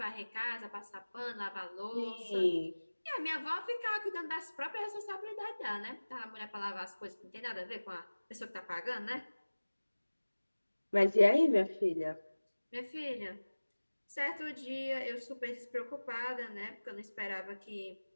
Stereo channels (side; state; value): both; inverted; correlation -1.00